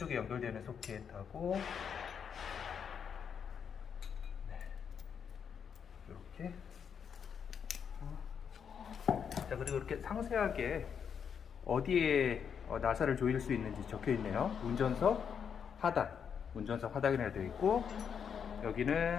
연결되는 소켓하고 이렇게 자, 그리고 이렇게 상세하게 어디에 나사를 조일 수 있는지 적혀 있네요. 운전석 하단이라고 되어 있고,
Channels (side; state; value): right; quieter; 7.3 dB